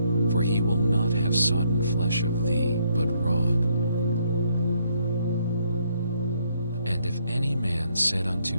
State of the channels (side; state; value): both; inverted; correlation -0.72